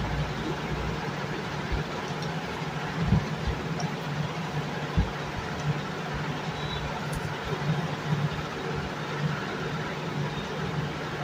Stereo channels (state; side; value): identical; both; correlation 1.00